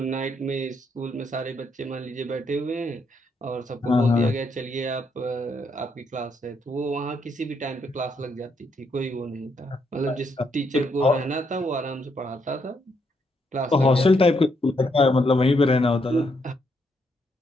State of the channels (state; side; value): normal; both; correlation 0.76